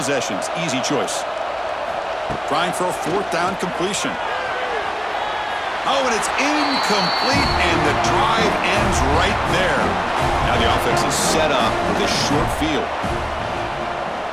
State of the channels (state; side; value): identical; both; correlation 1.00